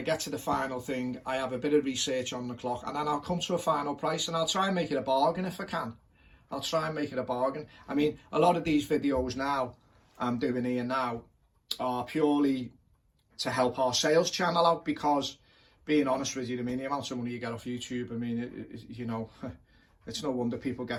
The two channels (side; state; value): both; identical; correlation 1.00